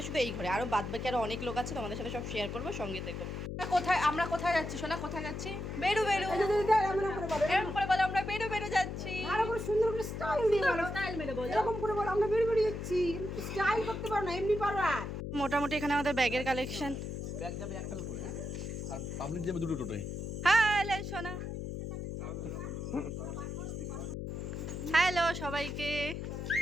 শুধু এই ঘরে, আরও বাদ বাকি আরও অনেক লোক আছে, তোমাদের সাথে সব শেয়ার করবো, সঙ্গে থেকো। আমরা কোথায় যাচ্ছি সোনা? কোথায় যাচ্ছি? বেরু বেরু এরকম করে বলো, আমরা বেরু বেরু যাচ্ছি। আরো করে সুন্দর করে স্টাইল দিয়ে বলো, স্টাইল মেরে বলো, এরকম করে বলো আমরা বেরু বেরু যাচ্ছি। স্টাইল করতে পারো না, এমনি পারো। মোটামুটি এখানে আমাদের ব্যাগের কালেকশন। ব্যাগ যাবে একটা টোটোয়, হ্যাঁ, আর পাবলিক যাবে দুটো টোটোয়। হ্যালো সোনা, হ্যালো সবাইকে।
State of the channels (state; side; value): noise; left; hum, 5 dB below the sound